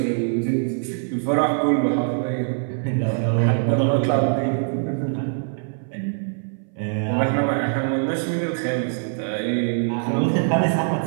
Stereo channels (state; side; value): silent; left; 60 dB below the other